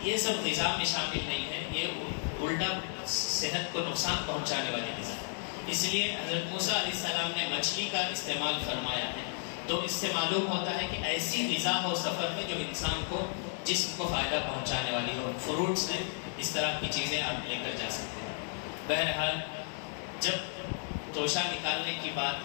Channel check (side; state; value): right; silent; 56 dB below the other